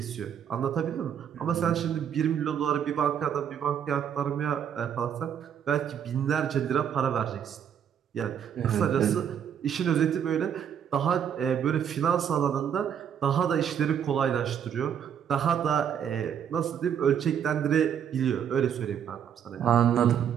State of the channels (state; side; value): quieter; left; 8.6 dB